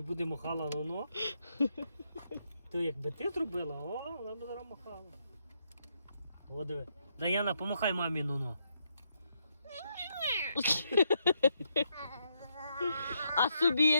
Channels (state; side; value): inverted; both; correlation -0.79